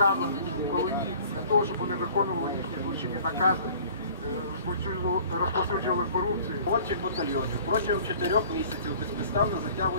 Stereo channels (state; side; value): inverted; both; correlation -0.49